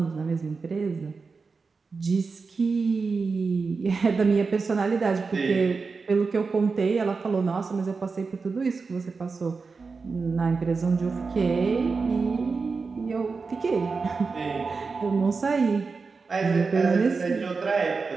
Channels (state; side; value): quieter; left; 4.6 dB